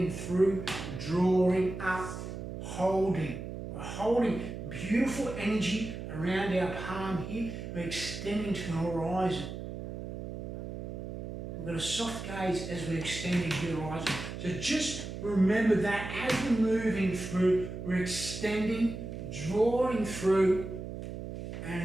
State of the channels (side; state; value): right; noise; hum, 7 dB below the sound